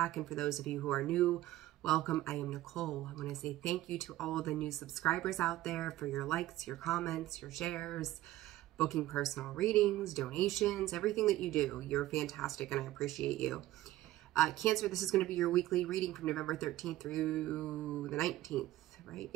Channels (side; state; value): left; quieter; 15.4 dB